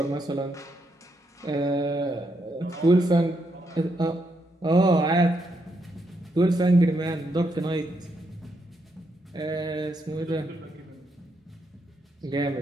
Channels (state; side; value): normal; both; correlation 0.79